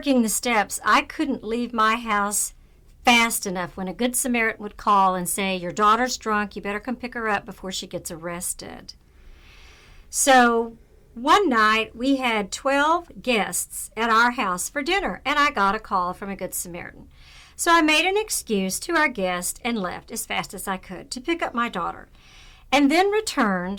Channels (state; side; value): identical; both; correlation 1.00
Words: the steps, I couldn't leave my house fast enough when a good Samaritan would call and say, your daughter's drunk, you better come pick her up before she gets arrested. So one night we had 12 guests at our house for dinner, and I got a call from a good Samaritan. So I made an excuse to our guest and left as fast as I could to pick up my daughter, and then